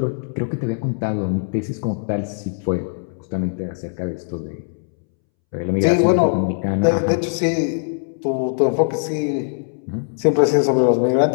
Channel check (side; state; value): right; silent; 65 dB below the other